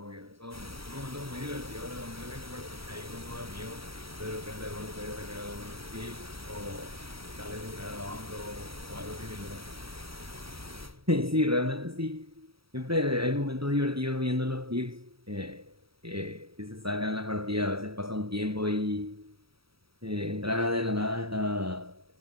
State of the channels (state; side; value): late; left; 0.76 ms